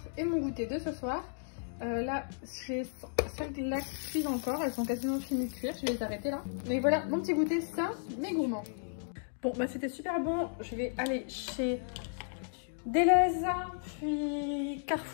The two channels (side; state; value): right; silent; digital silence